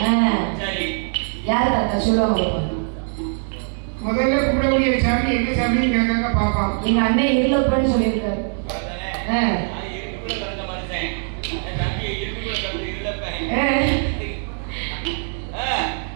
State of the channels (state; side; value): silent; left; 64 dB below the other